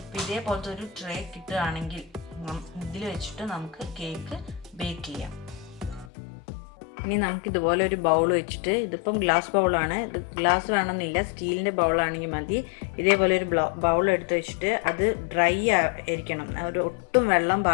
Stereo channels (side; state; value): right; drops out; at 6.1 s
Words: അപ്പോൾ ഇതേപോലത്തെ ഒരു ട്രേ കിട്ടുകയാണെങ്കിൽ ഇതിൽ വെച്ചിട്ട് നമുക്ക് കേക്ക് ബേക്ക് ചെയ്യാം. ഇനി നമുക്ക് ഇതുപോലെ ഒരു ബൗൾ വെച്ചിട്ട്, ഇതിപ്പം ഗ്ലാസ് ബൗളാണ്, ഇത് ഗ്ലാസ് വേണമെന്നില്ല, സ്റ്റീലിൻ്റെ ബൗളാണെങ്കിൽ മതി. ഇതേപോലെ ഒരു ബൗൾ എടുത്ത് വെച്ചിട്ട് അത് ഡ്രൈ ആയിരിക്കണം, ഒരു ഒട്ടും വെള്ളം